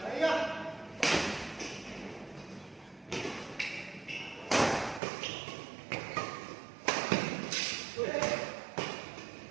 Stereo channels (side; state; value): left; drops out; at 5.0 s